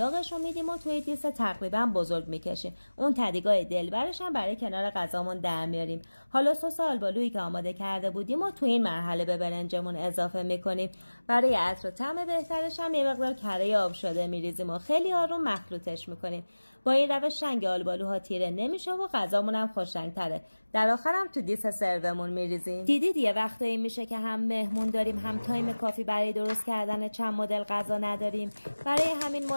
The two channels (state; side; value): inverted; both; correlation -1.00